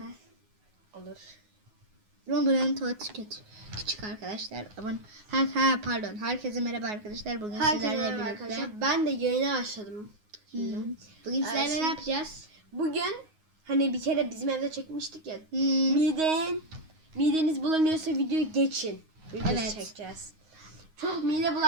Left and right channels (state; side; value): late; left; 9.5 ms